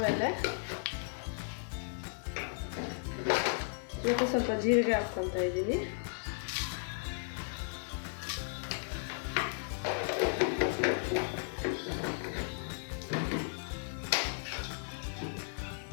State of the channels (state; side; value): silent; right; digital silence